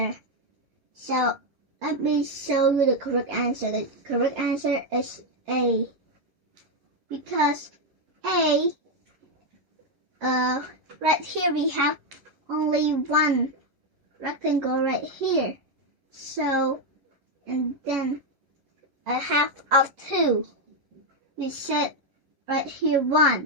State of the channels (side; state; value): left; late; 11 ms